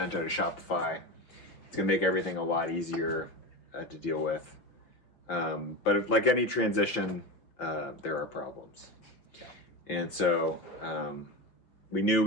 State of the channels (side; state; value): right; late; 5.8 ms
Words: to Shopify. It's going to make everything a lot easier to deal with. But like any transition, there are problems. Yeah. And so we knew